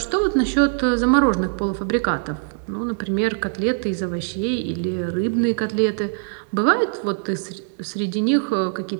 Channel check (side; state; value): left; silent; digital silence